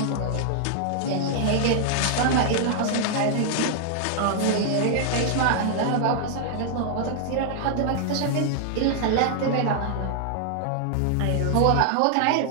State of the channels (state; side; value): different; both; correlation -0.01